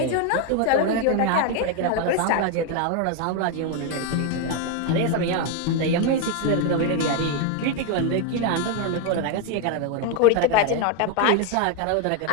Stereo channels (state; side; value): different; both; correlation 0.01